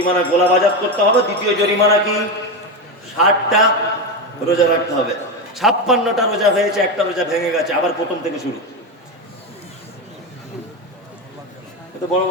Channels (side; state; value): both; normal; correlation 0.15